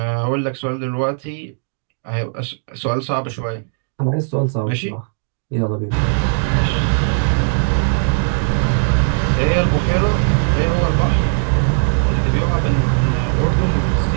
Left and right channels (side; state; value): left; silent; digital silence